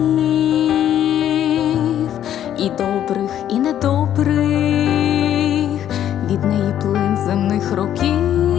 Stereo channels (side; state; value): right; quieter; 10.8 dB